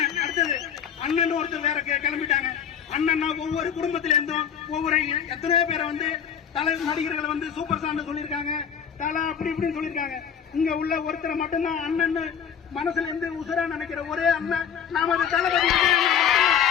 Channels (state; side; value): quieter; right; 8.1 dB